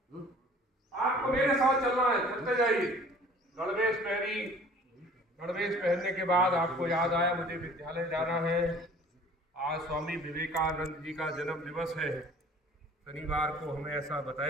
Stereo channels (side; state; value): both; normal; correlation 0.50